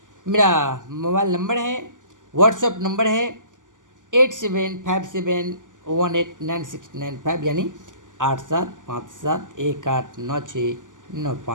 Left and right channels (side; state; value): left; late; 0.88 ms